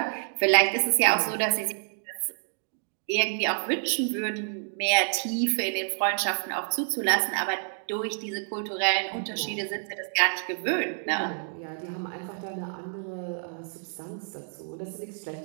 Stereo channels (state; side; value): silent; left; digital silence